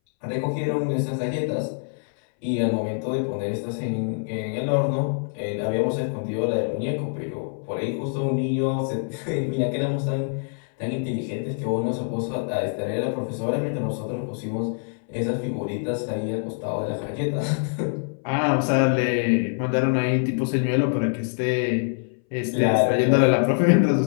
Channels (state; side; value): silent; right; 62 dB below the other